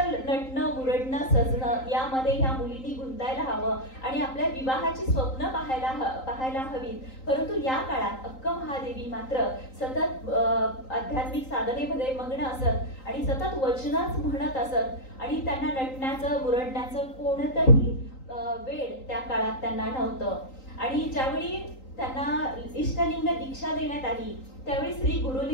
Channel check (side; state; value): right; late; 3.8 ms